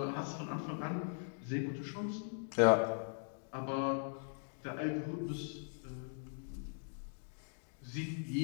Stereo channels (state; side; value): silent; right; digital silence